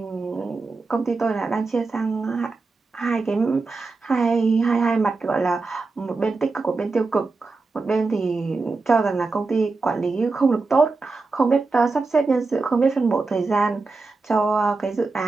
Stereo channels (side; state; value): left; quieter; 3.9 dB